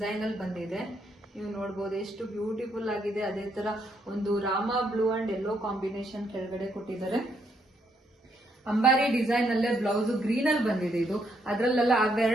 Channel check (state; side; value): normal; both; correlation 0.74